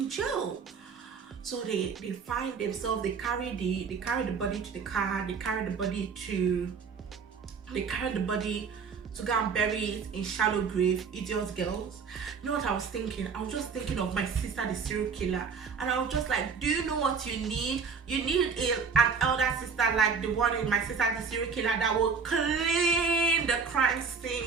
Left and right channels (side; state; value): left; quieter; 5.6 dB